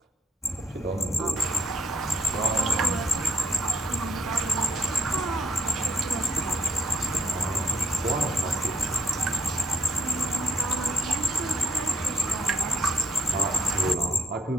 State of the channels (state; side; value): normal; both; correlation 0.69